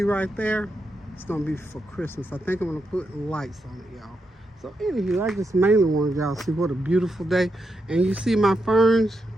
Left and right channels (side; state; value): both; normal; correlation 0.84